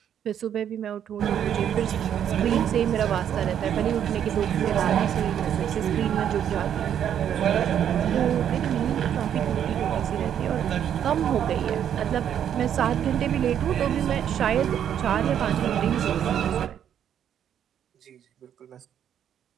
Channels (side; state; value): left; quieter; 9.4 dB